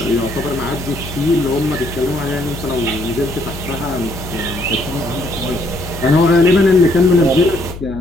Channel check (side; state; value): left; noise; hum, 12 dB below the sound